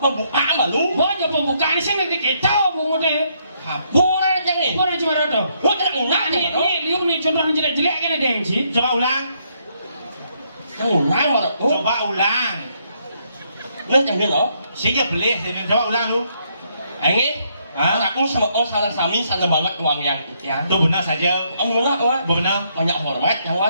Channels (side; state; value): both; inverted; correlation -0.73